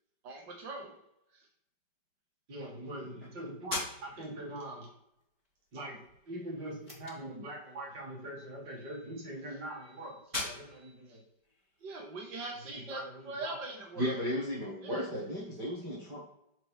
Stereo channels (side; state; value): left; late; 5.1 ms